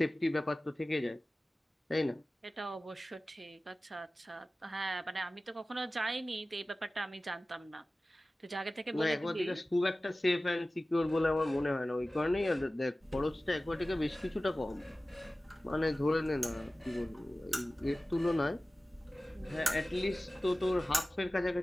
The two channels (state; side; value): normal; both; correlation 0.97